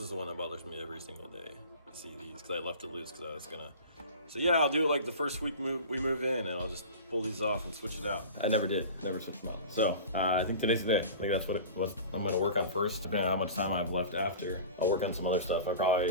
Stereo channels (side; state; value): both; inverted; correlation -0.36